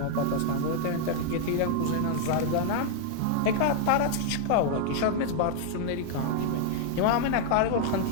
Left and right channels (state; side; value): different; both; correlation 0.00